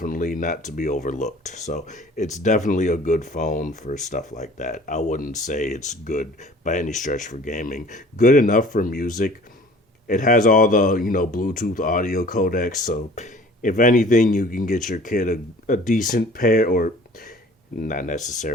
not to be overlooked. So it's definitely a good phone for stuff like that. I wouldn't say it's good by any stretch for gaming. Good enough for music. It has all the, Bluetooth audio codecs. So if anything, you can get your kid a decent pair, or not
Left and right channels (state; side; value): normal; both; correlation 0.49